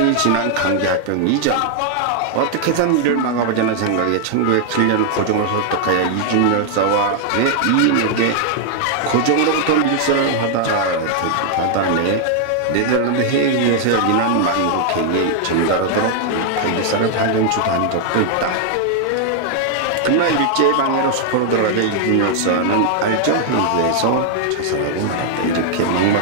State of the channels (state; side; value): different; both; correlation 0.00